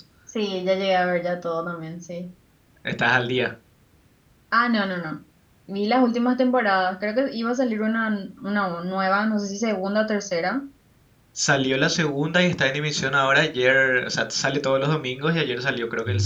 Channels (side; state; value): both; identical; correlation 1.00